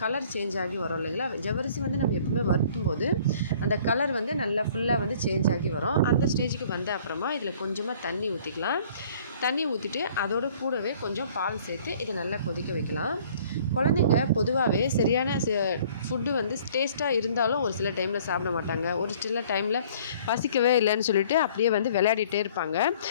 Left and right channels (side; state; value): both; inverted; correlation -0.54